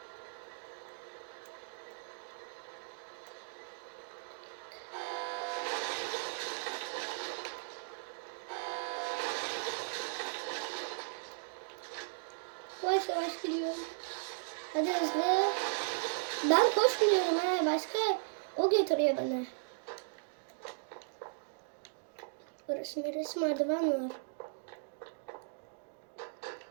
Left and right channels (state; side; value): silent; left; digital silence